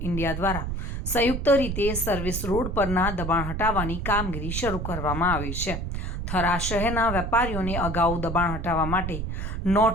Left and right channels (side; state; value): right; noise; rumble, 4 dB below the sound